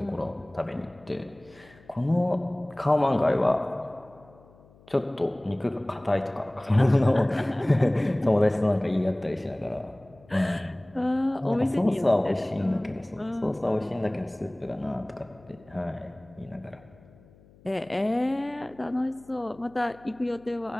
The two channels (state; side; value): noise; left; hum, 26 dB below the sound